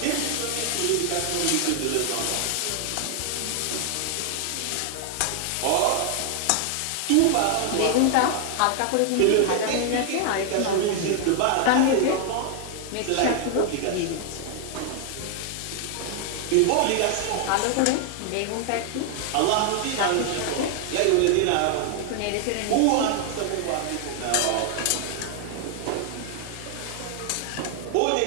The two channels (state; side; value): different; both; correlation 0.00